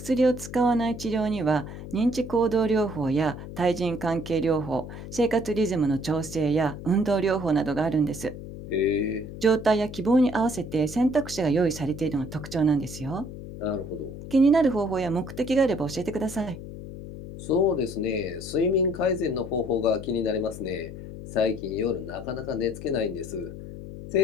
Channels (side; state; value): left; noise; hum, 11 dB below the sound